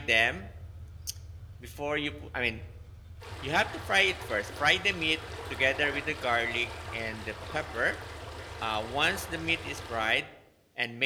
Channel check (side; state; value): both; identical; correlation 1.00